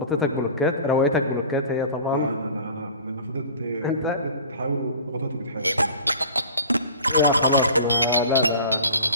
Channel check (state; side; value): inverted; both; correlation -0.41